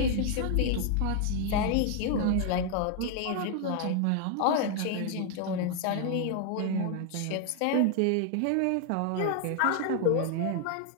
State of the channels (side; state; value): both; different; correlation 0.00